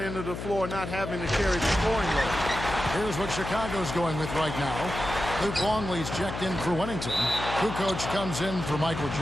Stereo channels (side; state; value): left; noise; hum, 7 dB below the sound